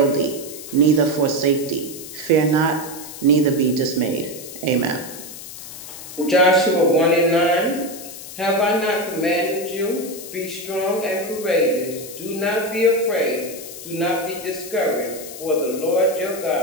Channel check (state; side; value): noise; left; hiss, 12 dB below the sound